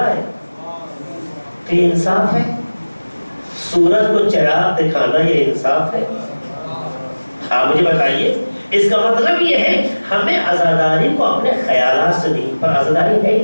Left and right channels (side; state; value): both; inverted; correlation -1.00